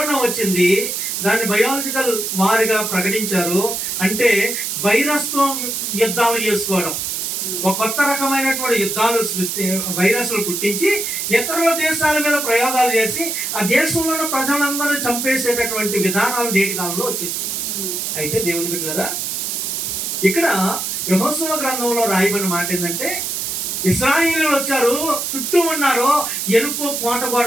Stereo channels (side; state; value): right; noise; hiss, 2 dB below the sound